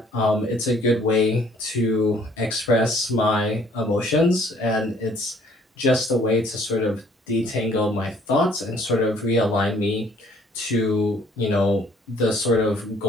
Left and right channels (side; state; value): both; normal; correlation 0.60